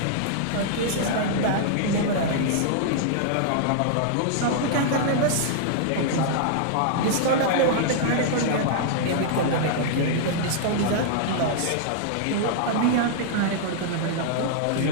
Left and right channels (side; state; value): both; different; correlation -0.01